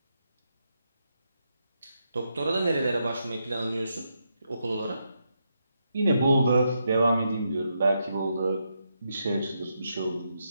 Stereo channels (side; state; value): both; inverted; correlation -0.82